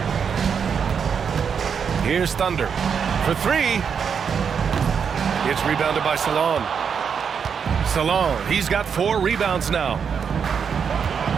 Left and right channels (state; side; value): quieter; left; 6.8 dB